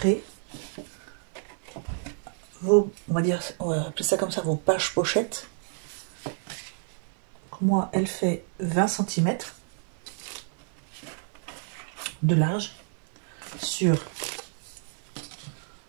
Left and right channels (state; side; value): silent; left; 59 dB below the other